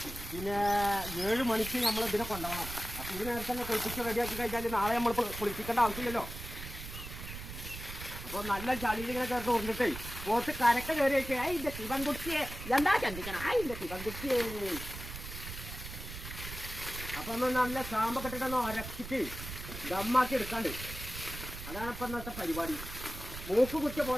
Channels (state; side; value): noise; right; rumble, 10 dB below the sound